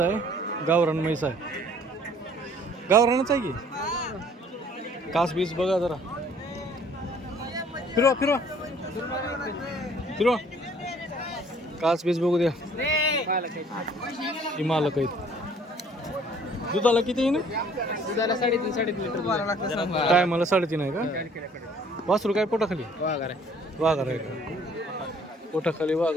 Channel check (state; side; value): normal; both; correlation 0.57